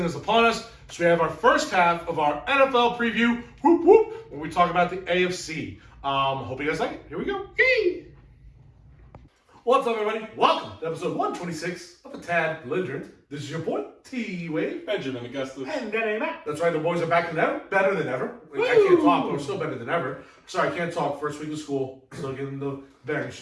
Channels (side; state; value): both; identical; correlation 1.00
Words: is upon us, so we have our first half of our NFL preview, whoop whoop, where we talk about the AFC. Hope you guys like it. Here we go. Yay! What's up, everybody? Welcome to episode 126 of A Tad Belligerent. This is your boy, T-Wave. Benjamin Augustus. And DannyMatt. That's right, the boys are back than ever, better than ever. I can't talk, but we're still better than ever. Sorry, I can't talk. First week of school, still getting the bearings